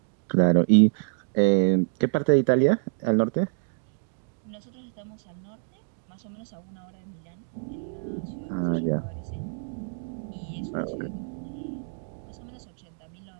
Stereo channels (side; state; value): left; silent; digital silence